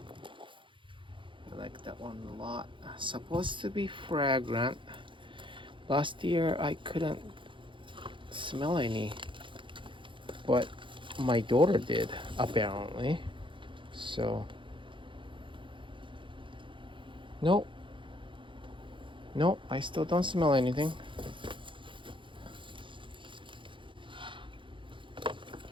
I like that one a lot. Supposed to be fragrant. Last year I couldn't smell any, but my daughter did, apparently. So nope, I still don't smell anything.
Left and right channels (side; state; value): left; late; 0.24 ms